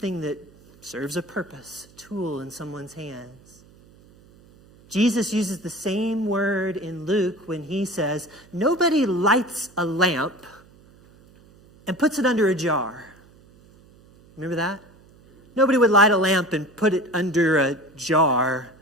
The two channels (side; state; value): right; noise; hum, 27 dB below the sound